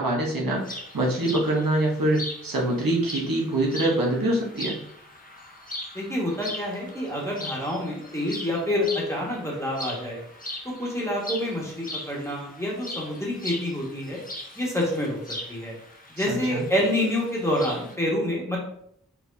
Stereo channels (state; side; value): normal; both; correlation 0.50